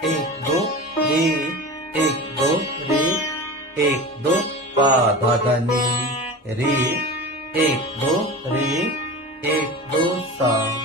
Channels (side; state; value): both; normal; correlation 0.31